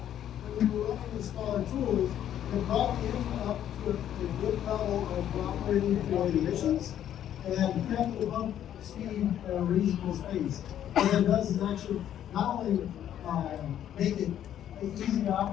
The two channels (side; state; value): right; quieter; 10.7 dB